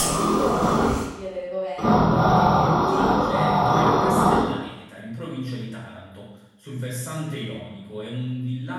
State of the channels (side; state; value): both; identical; correlation 1.00